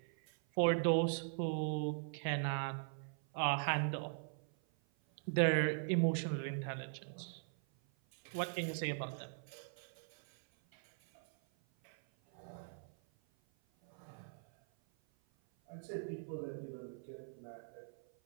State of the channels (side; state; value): left; silent; 51 dB below the other